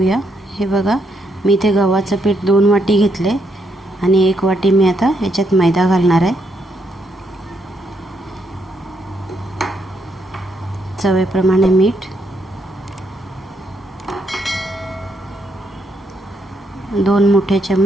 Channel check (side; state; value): both; normal; correlation 0.76